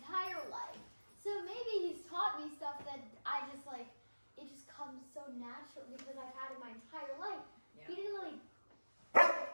life. So maybe he's taught me stuff that I just it just comes so natural because I've had it my entire life. Yeah. He didn't really,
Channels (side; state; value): both; inverted; correlation -1.00